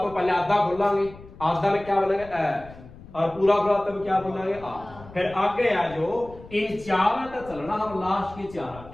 पहले आधा खोलेंगे, आधा में क्या बोलेंगे? ए। और पूरा खुला तब क्या बोलेंगे? आ। फिर आगे आ जो इन चार का चलना, हम लास्ट के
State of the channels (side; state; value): left; noise; rumble, 19 dB below the sound